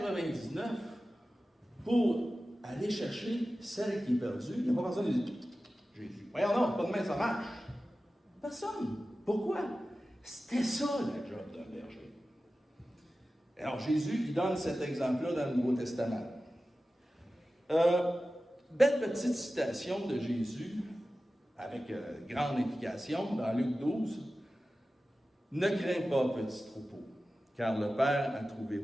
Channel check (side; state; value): both; normal; correlation 0.95